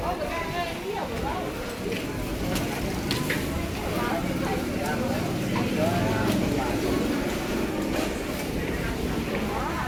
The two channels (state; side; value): identical; both; correlation 1.00